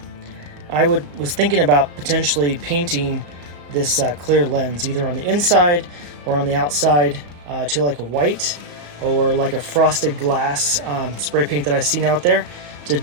I was thinking about potentially painting this clear lens either on the inside or on the outside to like a white or like a frosted glass spray paint that I've seen out there to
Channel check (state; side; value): late; left; 34 ms